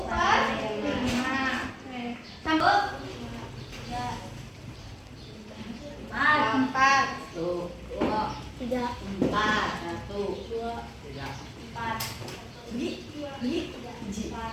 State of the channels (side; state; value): both; identical; correlation 1.00